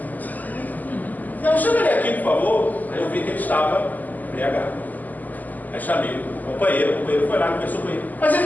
não, chama ele aqui, por favor. Aí eu vi que ele estava embriagado. Aí chamei o companheiro foi lá, conversou com ele. Mas ele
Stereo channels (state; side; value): late; right; 0.082 ms